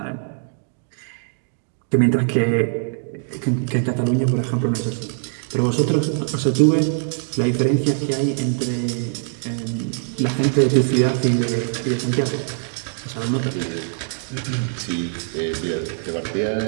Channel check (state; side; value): silent; left; digital silence